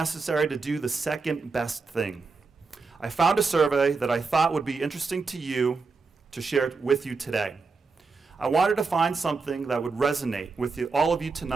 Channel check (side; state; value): left; quieter; 4.4 dB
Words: to do the second best thing. I found a survey that I thought would be interesting to you to share with you today. I wanted to find something that would resonate with all of you